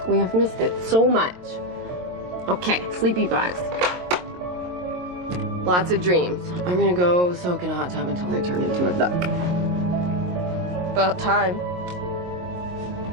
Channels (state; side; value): late; left; 22 ms